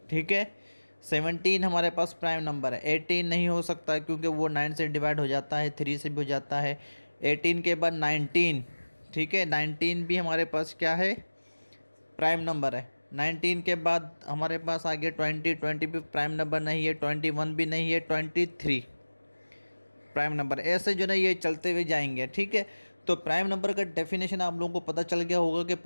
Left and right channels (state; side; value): inverted; both; correlation -1.00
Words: ठीक है, सेवनटीन हमारे पास प्राइम नंबर है। एटीन नहीं हो सकता क्योंकि वो नाइन से डिवाइड हो जाता है, थ्री से भी हो जाता है। एटीन के बाद नाइनटीन। ठीक है, नाइनटीन भी हमारे पास क्या है? प्राइम नंबर है। नाइनटीन के बाद हमारे पास आ गया ट्वेंटी, ट्वेंटी भी प्राइम नंबर नहीं है। ट्वेंटी वन भी नहीं है। Twenty three prime number. ऐसे जो ना ये चलते हुए जाएंगे। ठीक है, तो प्राइम नंबर का डेफिनेशन आप लोगों को पता चल गया होगा कि